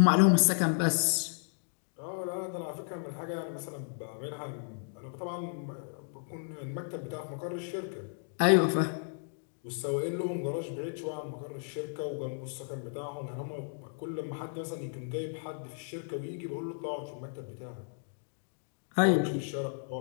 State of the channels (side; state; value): right; silent; digital silence